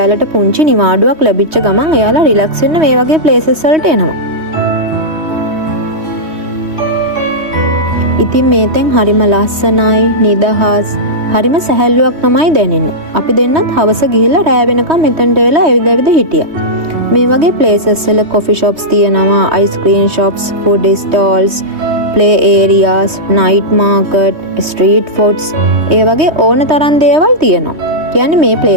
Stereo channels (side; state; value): left; late; 3.2 ms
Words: පුංචි නිවාඩුවක් ලැබිච්ච ගමන් එයාලා රිලැක්ස් වෙන්න මේ වගේ ප්ලේසස් වලට එනවා. ඉතින් මේ තැන් හරිම ලස්සනයි, නිදහස්, හරිම සැහැල්ලුවක් තමයි දැනෙන්නේ. අපි දෙන්නත් හවස ගිහිල්ලා රෑ වෙනකම් මෙතනට වෙලා ඇවිද හිටියා. මේ වගේ ප්ලේසස් වල කොෆි shops තියෙනවා, ice cream shops, food stalls, play areas, night market, street foods, ඒ වගේ ඕන තරම් දේවල් තියෙනවා. කියන්නේ මේ